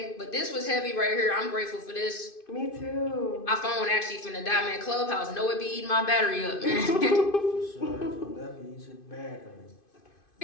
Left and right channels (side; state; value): right; late; 2.5 ms